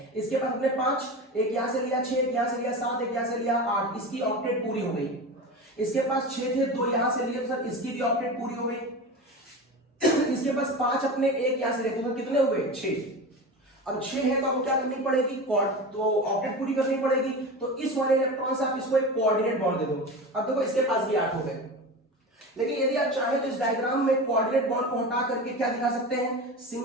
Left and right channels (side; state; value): both; normal; correlation 0.28